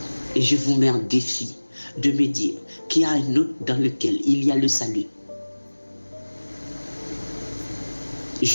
Et je vous mets en défi de me dire qu'il y a un autre dans lequel il y a le salut.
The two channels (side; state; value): both; inverted; correlation -1.00